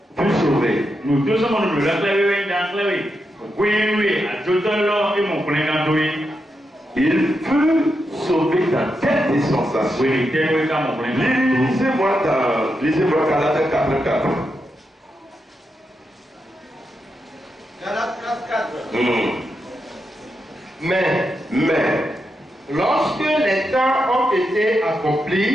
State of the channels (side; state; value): both; normal; correlation 0.85